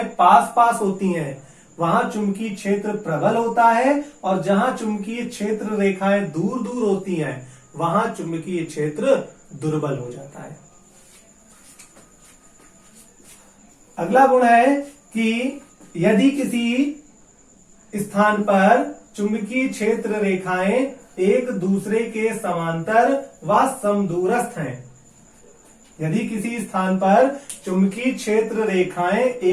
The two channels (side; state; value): both; identical; correlation 1.00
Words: पास पास होती हैं, वहां चुंबकीय क्षेत्र प्रबल होता है, और जहां चुंबकीय क्षेत्र रेखाएं दूर दूर होती हैं, वहां चुंबकीय क्षेत्र दुर्बल हो जाता है। अगला गुण है कि यदि किसी स्थान पर चुंबकीय क्षेत्र रेखाएं एक दूसरे के समांतर व समदूरस्थ हैं, यदि किसी स्थान पर चुंबकीय क्षेत्र रेखाएं